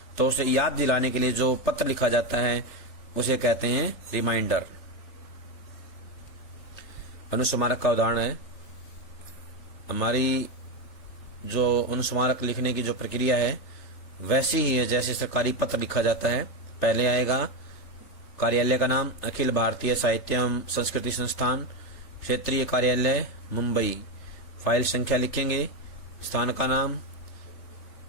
तो उसे याद दिलाने के लिए जो पत्र लिखा जाता है उसे कहते हैं रिमाइंडर। अनुस्मारक का उदाहरण है, हमारी जो अनुस्मारक लिखने की जो प्रक्रिया है वैसी ही है जैसे सरकारी पत्र लिखा जाता है। पहले आएगा कार्यालय का नाम, अखिल भारतीय साहित्य एवं संस्कृति संस्थान, क्षेत्रीय कार्यालय मुंबई। फाइल संख्या लिखेंगे, स्थान का नाम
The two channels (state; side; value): late; right; 3.4 ms